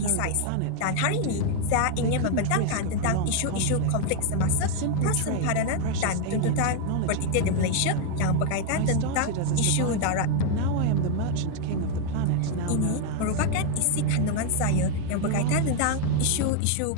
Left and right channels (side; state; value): both; different; correlation 0.00